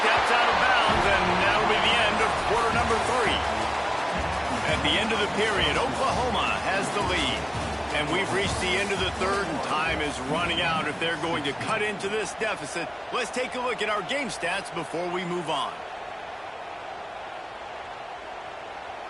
out of bounds, and that'll be the end of quarter number 3. At the end of the period, Oklahoma has the lead. And we've reached the end of the 3rd, and time is running out if they're going to cut into this deficit. Let's take a look at our game stats before we move on.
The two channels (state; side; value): identical; both; correlation 1.00